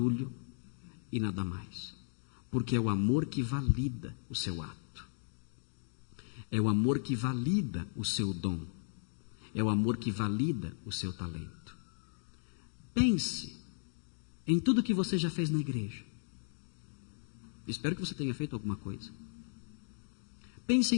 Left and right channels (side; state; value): right; silent; digital silence